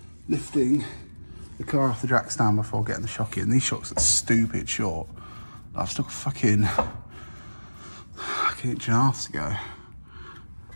lifting the car off the jack stand before getting the shock in. These shocks are stupid short. I've stuck a fucking inch and a half to go.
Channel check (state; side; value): inverted; both; correlation -1.00